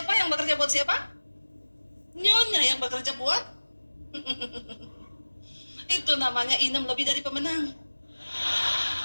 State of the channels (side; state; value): both; inverted; correlation -1.00